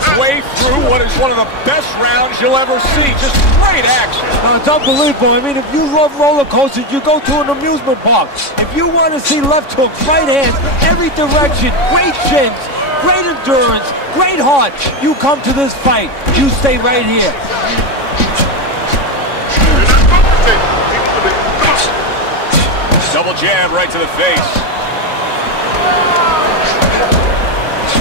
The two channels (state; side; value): late; right; 3.6 ms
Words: through what is one of the best rounds you'll ever see. Just great action. No, it's unbelievable. I mean, if you love roller coasters, you go to an amusement park. If you want to see left hooks, right hands, every direction, great chins, great endurance, great heart, you come to this fight. You stay right here. Double jab right to the face.